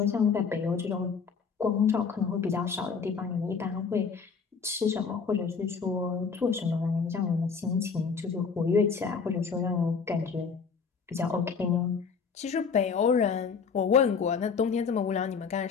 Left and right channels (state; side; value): quieter; right; 5.7 dB